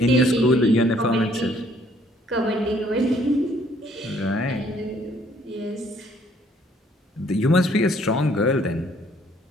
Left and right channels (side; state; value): both; normal; correlation 0.63